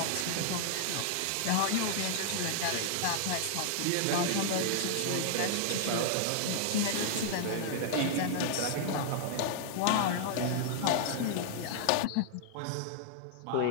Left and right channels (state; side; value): different; both; correlation -0.01